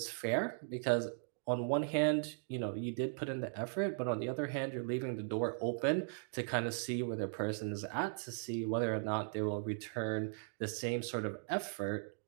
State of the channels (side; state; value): left; silent; digital silence